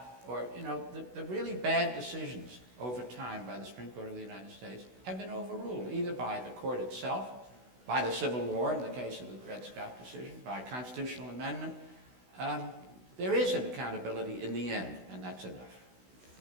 or, the really bad decisions over time by the Supreme Court of the United States have been overruled, either by the court itself, by the Civil War in the case of the Dred Scott decision, by constitutional amendment. There is an accountability in the end, and that's enough.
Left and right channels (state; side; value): late; left; 16 ms